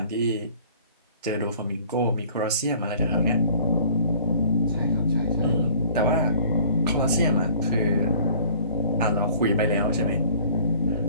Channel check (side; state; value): both; inverted; correlation -0.51